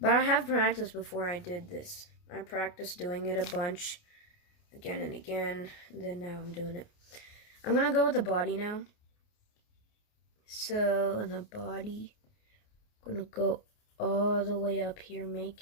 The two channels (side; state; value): right; late; 29 ms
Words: I have practiced before I did this. I practiced doing it a bunch, again and again, and then now I'm doing it. I'm gonna go with the body now. So in the body, I'm gonna go all the way up here,